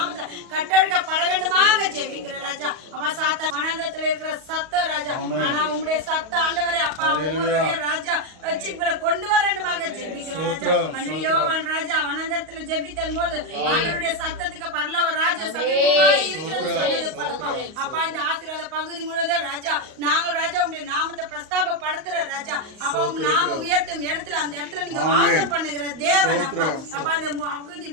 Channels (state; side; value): late; left; 38 ms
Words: கட்டெடுக்கப்பட வேண்டுமாக ஜெபிக்கிற ராஜா. அப்பா சாத்தா வனாந்தரத்தில் இருக்கிற சத்தம் ராஜா, ஆனா உம்முடைய சத்த ஆண்டவரே அப்பா ராஜா ரட்சிப்புகளை கொண்டு வர வேண்டுமாக ஜெபிக்கிறோம் ராஜா. யோவான் ராஜா வனாந்தரத்தில் ஜெபித்தன் போது ஆண்டவருடைய சத்தத்துக்கு பரலோக ராஜா சமீபமாய் இருக்கிறது சொன்னது பலப்பா. அப்பா இந்த ஆசீர்வாத பகுதி முழுவதும் ராஜா நாங்கள் ராஜா உங்களுடைய நாமத்தை பிரஸ்தாபப்படுத்துற ராஜா. அப்பா உங்க நாம உயர்த்தும் இடத்துல அந்த இடத்துல நீங்க வாசம் பண்ணுகிற தேவன் அப்பா. அப்பா இந்த பகுதி